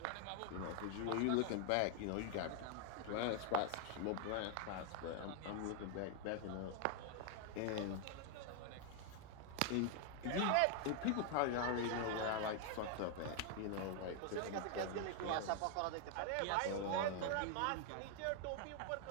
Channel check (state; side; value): different; both; correlation 0.00